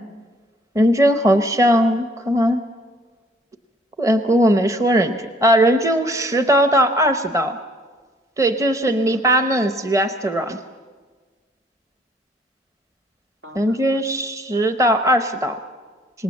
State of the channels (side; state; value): both; normal; correlation 0.60